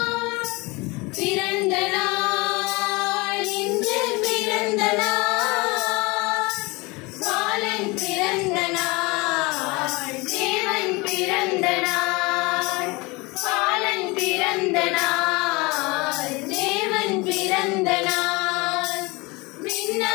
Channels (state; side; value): quieter; right; 25.0 dB